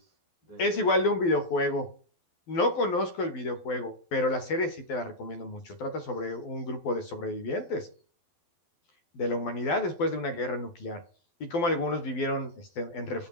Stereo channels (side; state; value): right; late; 12 ms